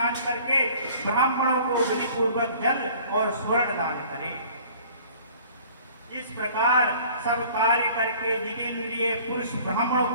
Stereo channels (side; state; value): both; inverted; correlation -0.50